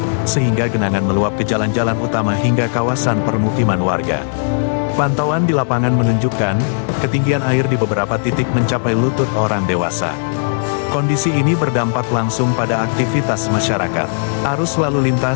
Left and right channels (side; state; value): right; silent; digital silence